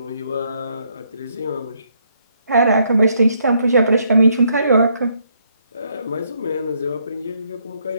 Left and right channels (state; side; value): inverted; both; correlation -0.72